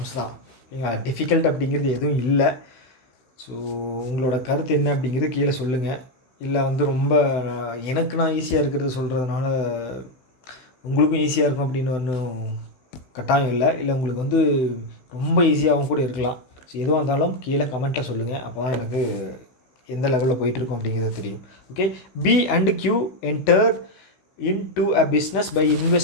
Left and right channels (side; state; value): right; late; 16 ms